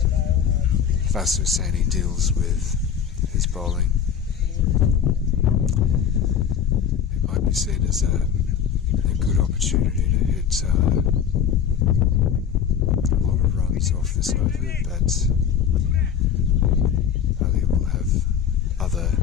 Vasu Saini deals with his bowling. It might be seen as a good opportunity to hit off this over, but Ali will have other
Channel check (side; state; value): right; quieter; 8.0 dB